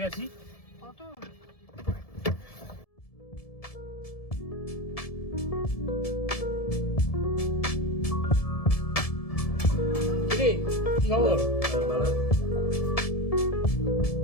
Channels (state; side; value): late; right; 1.7 ms